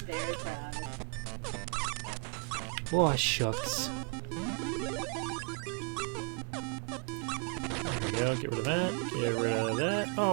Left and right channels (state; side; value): quieter; left; 38.0 dB